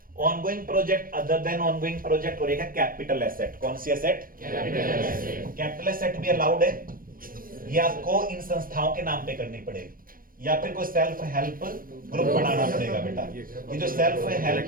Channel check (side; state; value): left; late; 0.41 ms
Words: Ongoing project other than ongoing project और एक है कैपिटल एसेट। कौन सी एसेट? कैपिटल एसेट भी अलाउड है। ये आपको इन संस्थाओं के नाम पे करनी पड़ेगी या फिर कोई सेल्फ हेल्प ग्रुप बनाना पड़ेगा बेटा। ये जो सेल्फ